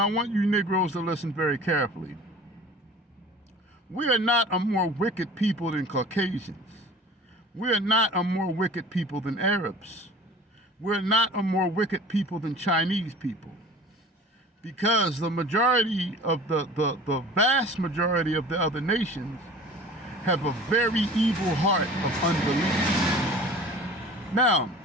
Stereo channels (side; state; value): both; normal; correlation 0.42